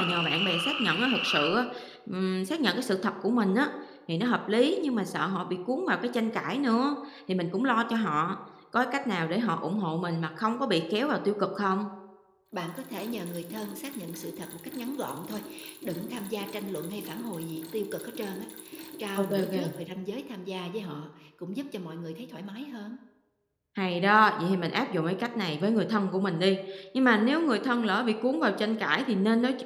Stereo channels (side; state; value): both; identical; correlation 1.00